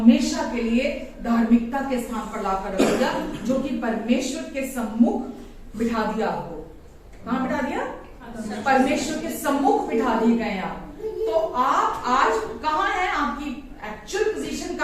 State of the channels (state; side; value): identical; both; correlation 1.00